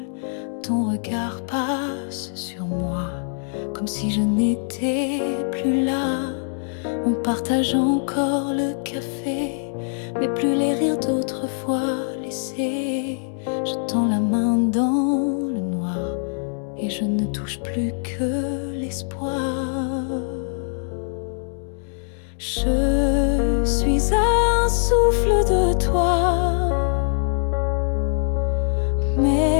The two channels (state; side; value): silent; right; digital silence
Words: Ton regard passe sur moi, comme si je n'étais plus là. On partage encore le café, mais plus les rires d'autrefois laissés. Je tends la main dans le noir et je ne touche plus que l'espoir. Je suis un souffle de toi,